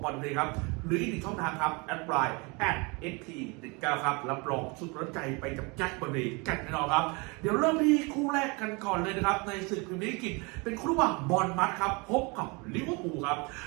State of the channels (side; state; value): left; quieter; 28.9 dB